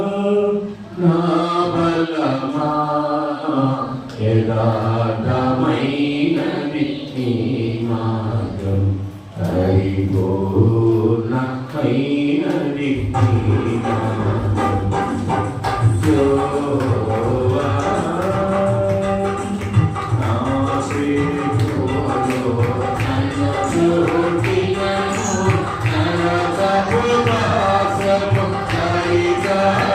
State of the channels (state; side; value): identical; both; correlation 1.00